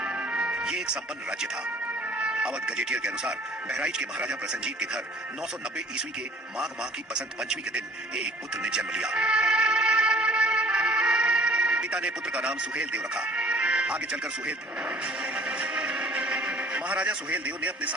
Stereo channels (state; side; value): normal; both; correlation 0.53